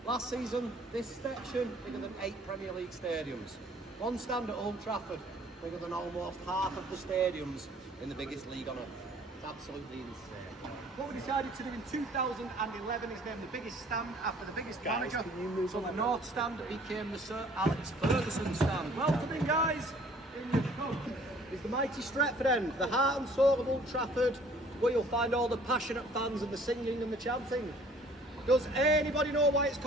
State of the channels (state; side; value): normal; both; correlation 0.55